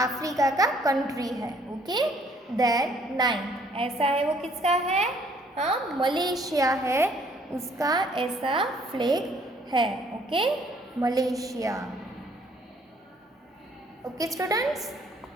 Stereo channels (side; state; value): both; normal; correlation 0.63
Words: का कंट्री है. ओके, देन नाइन्थ, ऐसा है वो किसका है. हाँ, मलेशिया है, उसका ऐसा फ्लैग है. Okay, Malaysia. Okay students,